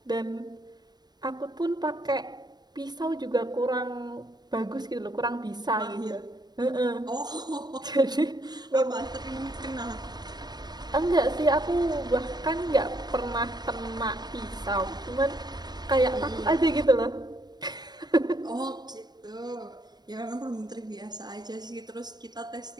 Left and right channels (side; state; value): left; late; 0.20 ms